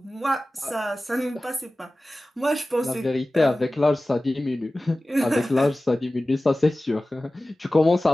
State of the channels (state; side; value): normal; both; correlation 0.96